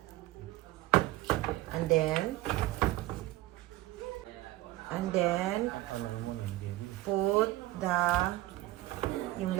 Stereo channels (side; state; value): left; quieter; 17.5 dB